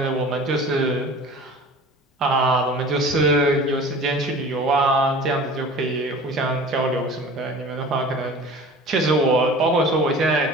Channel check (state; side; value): normal; both; correlation 0.41